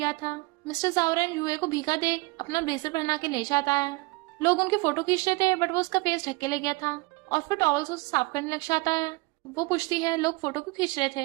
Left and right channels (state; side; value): quieter; left; 25.1 dB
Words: था। मिस्टर जावरन यूए को भीगा देख अपना ब्लेजर पहना के ले जाता है। लोग उनकी फोटो खींच रहे थे, बट वो उसका फेस ढक के ले गया था और फिर टॉवल से उसे साफ करने लग जाता है। वो पूछती है, लोग फोटो क्यों खींच रहे